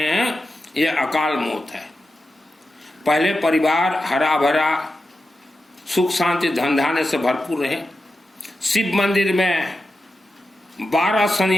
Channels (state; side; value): normal; both; correlation 0.91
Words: हैं, ये अकाल मौत है। पहले परिवार हरा भरा सुख शांति धन धान्य से भरपूर रहे। शिव मंदिर में 12